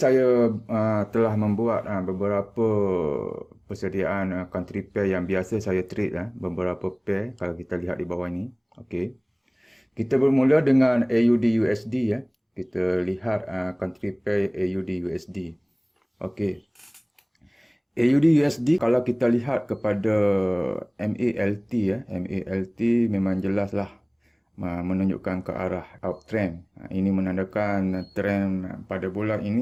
telah membuat beberapa persediaan country pair yang biasa saya trade beberapa pair kalau kita lihat di bawah ini. Okey. Kita bermula dengan AUD USD ya. Kita lihat country pair AUD USD. Okey. AUD USD kalau kita lihat kepada MALT ya, MALT memang jelaslah menunjukkan ke arah uptrend. Ini menandakan trend pada bulan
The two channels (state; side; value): identical; both; correlation 1.00